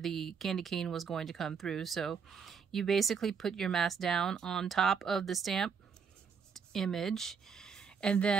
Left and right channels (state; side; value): quieter; left; 6.2 dB